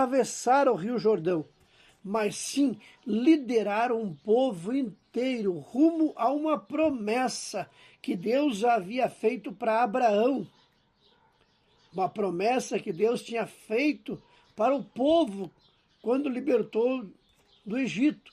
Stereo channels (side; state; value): both; identical; correlation 1.00